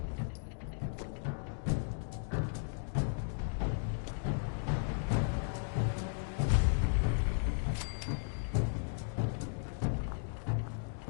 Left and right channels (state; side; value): silent; right; digital silence